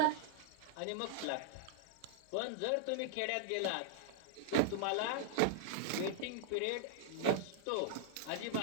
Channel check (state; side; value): different; both; correlation -0.01